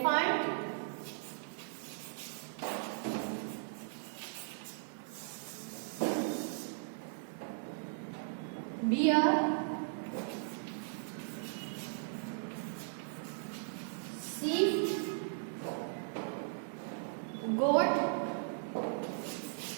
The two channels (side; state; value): left; silent; 53 dB below the other